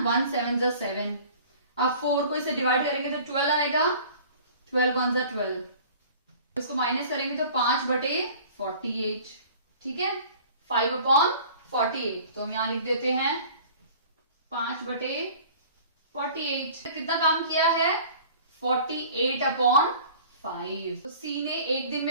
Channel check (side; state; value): both; inverted; correlation -0.46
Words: 7 जा 7। अब 4 को इससे डिवाइड करेंगे तो 12 आएगा, 12 1 जा 12। इसको माइनस करेंगे तो 5/48, ठीक है, 5/48। तो हम यहां लिख देते हैं 5/48। कितना काम किया है? 48/5। तो सी ने एक दिन